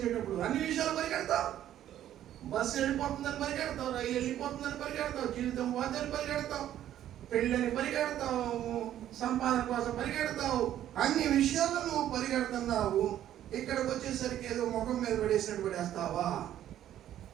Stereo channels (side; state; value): left; quieter; 11.7 dB